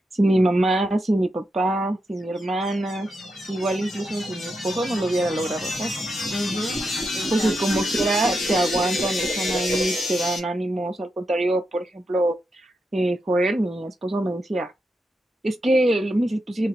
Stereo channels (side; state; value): both; normal; correlation 0.85